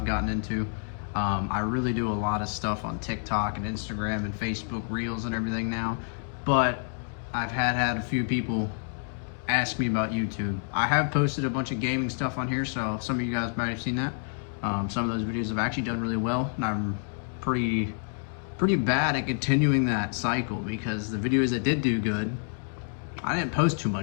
gotten into. I really do a lot of stuff on TikTok and Instagram and Facebook Reels and everything now, but I've had a few people ask me about YouTube. I have posted a bunch of gaming stuff on here, so some of you guys might have seen that. Some of those videos have actually done really well, and I'm pretty bad at continuing that cycle because the videos that did do good, I didn't post too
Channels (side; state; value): right; silent; 59 dB below the other